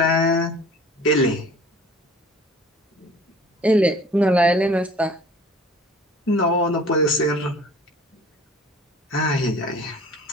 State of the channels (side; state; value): both; normal; correlation 0.47